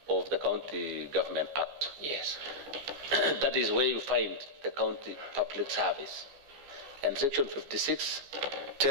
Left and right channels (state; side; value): late; left; 14 ms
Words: of the County Government Act. Yes. That is where you find the county public service. And Section 56